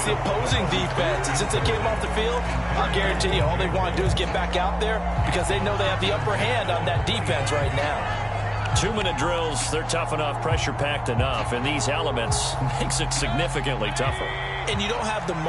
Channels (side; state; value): both; identical; correlation 1.00